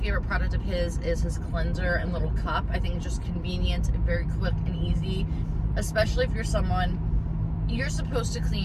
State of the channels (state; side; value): identical; both; correlation 1.00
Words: favorite product of his is his cleanser and little cup. I think it's just convenient and very quick and easy, especially if you're someone, you're supposed to